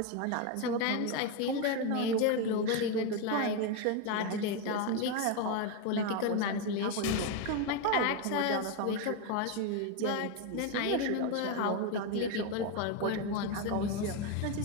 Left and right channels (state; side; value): different; both; correlation 0.02